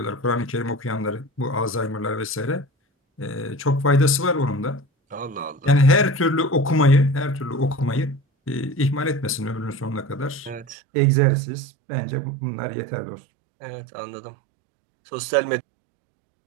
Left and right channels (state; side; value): drops out; left; at 10.8 s